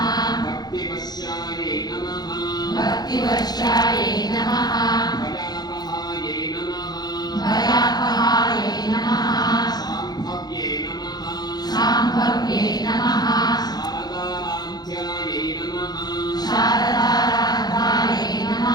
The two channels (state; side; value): late; right; 0.19 ms